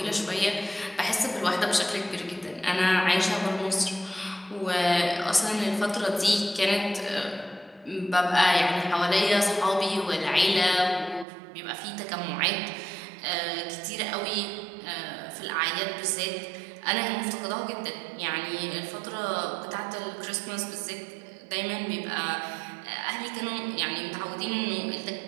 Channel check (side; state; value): left; drops out; at 11.2 s